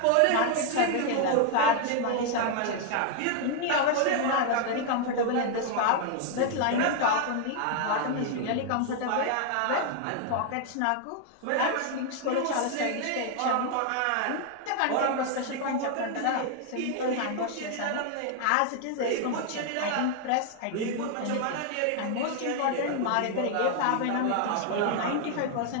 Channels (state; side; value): different; both; correlation 0.00